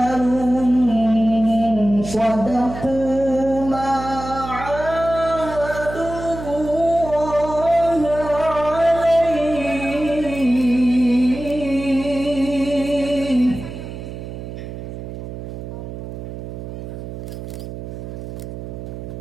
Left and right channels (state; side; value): noise; right; hum, 9 dB below the sound